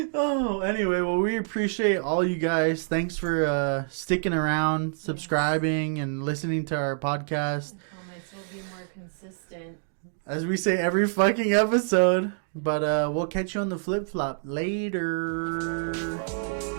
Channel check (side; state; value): left; silent; digital silence